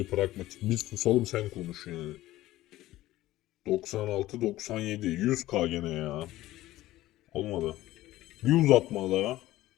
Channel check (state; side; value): quieter; right; 16.0 dB